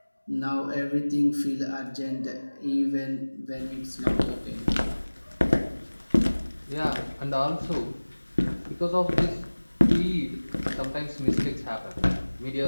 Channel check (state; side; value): inverted; both; correlation -1.00